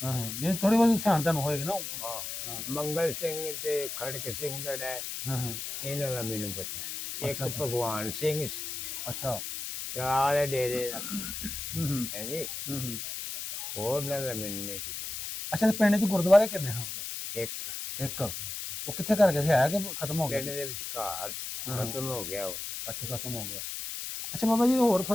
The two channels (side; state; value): left; noise; hiss, 6 dB below the sound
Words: ਹਾਂ ਹਾਂ। ਜੇ ਥੋੜੀ ਬਹੁਤ ਸਿਆਣ ਤੁਹਾਨੂੰ ਹੋਏਗੀ ਨਾ। ਹਾਂ। ਹਾਂ ਮੰਗਲ ਸਿੰਘ ਤੇ ਖੜਕ ਸਿੰਘ ਜਿਹੜਾ ਹੈ, ਹਾਂ ਹਾਂ। ਇਹਨਾਂ ਦਾ ਮੈਨੂੰ ਪਤਾ ਹੈ। ਇੱਕ ਅੱਛਾ, ਅੱਛਾ। ਭਗਵਾਨ ਸਿੰਘ ਸੀ, ਅੱਛਾ। ਤਲਾਲ ਡੇਰੇ ਦਾ। ਹੂੰ ਹੂੰ ਹੈ ਜੀ। ਹੂੰ। ਹੋਰ ਨਾ ਦਾ ਮੈਨੂੰ ਨਹੀਂ ਜੀ। ਅੱਛਾ, ਤੇ ਪਿੰਡ 'ਚ ਗੁਰਦੁਆਰੇ ਕਿੰਨੇ ਹਨ? ਇੱਕ ਇੱਕ। ਉਹ ਕਿੱਥੇ ਕਰ ਗਿਆ ਸੀ, ਹੈ ਕਿ ਖਤਮ ਹੋ ਗਿਆ? ਪਿੰਡ ਦੇ ਵਿਚਕਾਰ ਹਾਂ, ਹਾਂ। ਖਤਮ ਹੋ ਗਿਆ ਉਹ। ਅੱਛਾ, ਖਤਮ ਹੋ ਗਿਆ। ਅੱਛਾ ਬਾਬਾ ਜੀ, ਹੋਰ